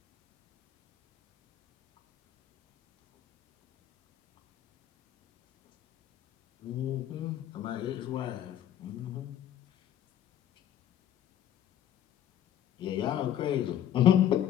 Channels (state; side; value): quieter; right; 10.9 dB